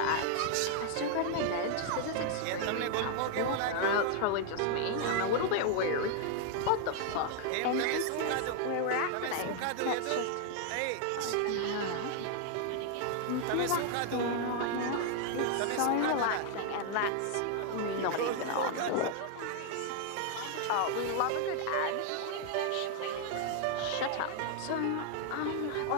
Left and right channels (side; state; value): both; different; correlation 0.00